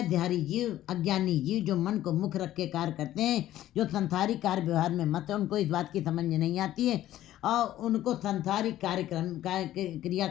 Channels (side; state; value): right; quieter; 13.5 dB